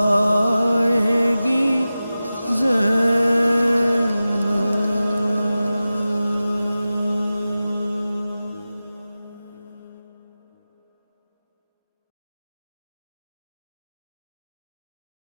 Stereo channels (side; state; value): both; inverted; correlation -0.95